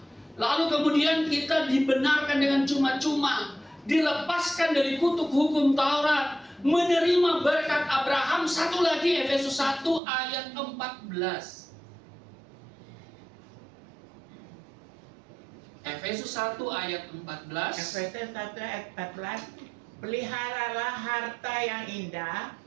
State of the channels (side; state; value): left; drops out; at 10.0 s